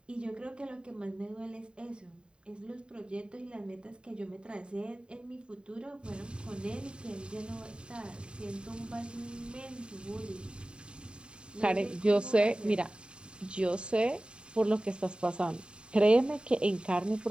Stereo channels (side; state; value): left; late; 0.051 ms